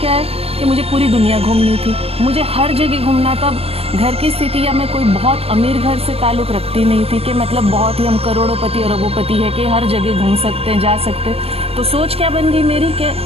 है कि मुझे पूरी दुनिया घूमनी थी, मुझे हर जगह घूमना। तब घर की स्थिति या मैं कोई बहुत अमीर घर से ताल्लुक़ रखती नहीं थी कि मतलब बहुत ही हम करोड़ोंपति और अरबोंपति है कि हर जगह घूम सकते हैं, जा सकते हैं। तो सोच क्या बन गई मेरी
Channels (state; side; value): late; left; 0.29 ms